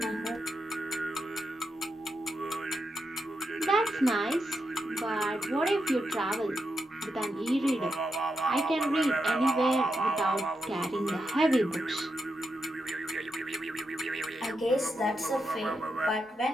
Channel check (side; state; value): both; normal; correlation 0.85